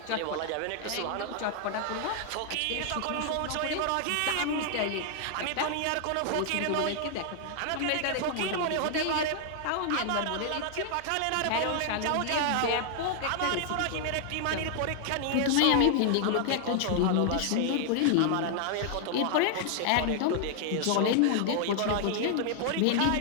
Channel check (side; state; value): both; different; correlation 0.00